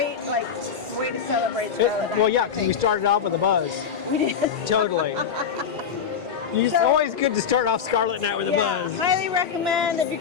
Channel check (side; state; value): right; quieter; 7.1 dB